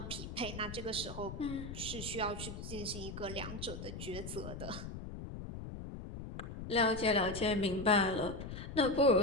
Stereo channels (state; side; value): noise; left; rumble, 9 dB below the sound